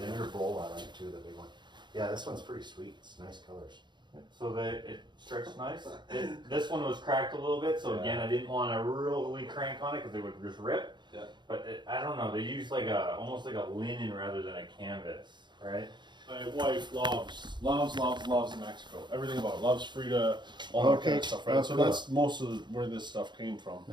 inner bowl I like too, the big one. Yeah, this one's pretty sweet. It's nice colors. so that it stretched nice. This one was cracked a little bit, so again, I didn't want to really crank on it because it would just rip. Yeah. But I don't know, they use like almost like a linen rather than a canvas, right? My wife loves Mexico. Everything about it. Loves Frida, all that kind of stuff, right? Oh, So cool. that's most of where this stuff came from.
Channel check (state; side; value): late; left; 0.22 ms